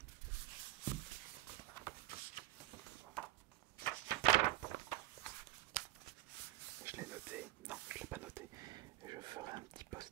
Je l'ai noté. Non, je l'ai pas noté. Je ferai un petit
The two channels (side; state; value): left; quieter; 16.4 dB